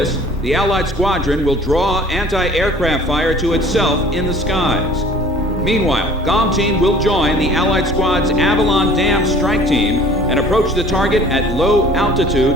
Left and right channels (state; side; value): normal; both; correlation 0.49